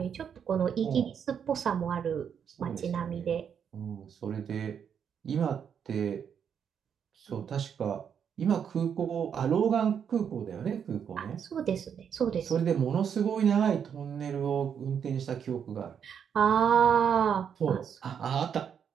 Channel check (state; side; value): quieter; left; 7.8 dB